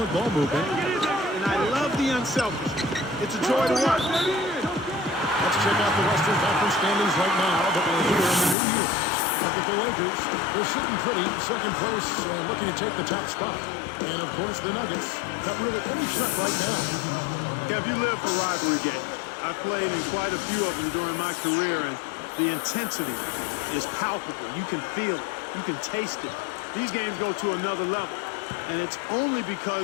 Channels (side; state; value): right; drops out; at 8.6 s